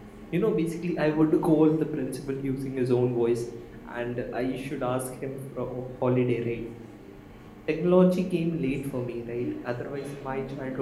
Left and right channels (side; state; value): both; identical; correlation 1.00